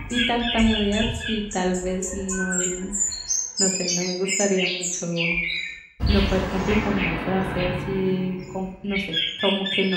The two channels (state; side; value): identical; both; correlation 1.00